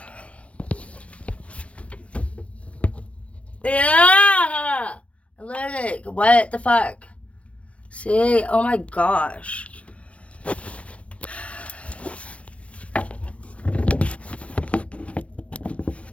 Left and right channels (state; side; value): late; right; 0.063 ms